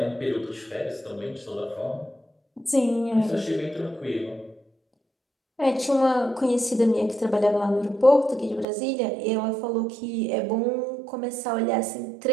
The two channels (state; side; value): drops out; left; at 8.7 s